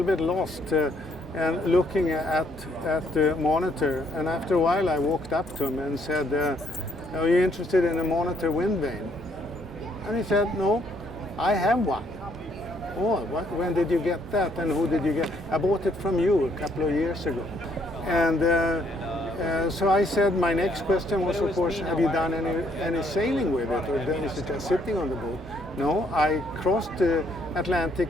bit lost and looking at the monitor. And after a while, I walked up to him and said, "Are you interested in a monitor windvane?" And he said, "No, I have one." "Oh, when did you get that, and who did you get?" "I bought it from you a couple of years ago." And so I said, my next question was, of course, have you done any sailing with it, or is it just sitting on the boat? No, I crossed the Atlantic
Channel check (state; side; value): normal; both; correlation 0.69